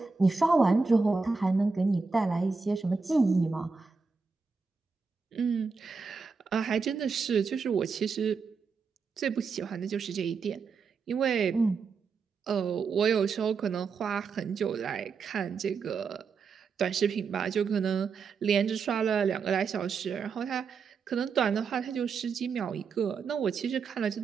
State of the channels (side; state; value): left; quieter; 5.0 dB